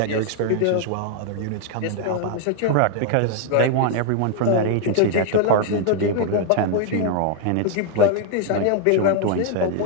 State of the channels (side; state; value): both; different; correlation 0.00